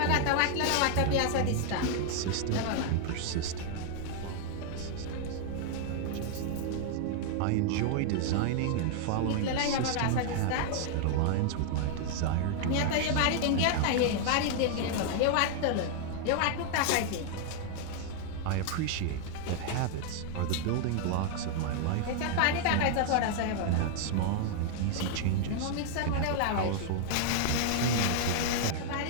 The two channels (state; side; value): different; both; correlation 0.00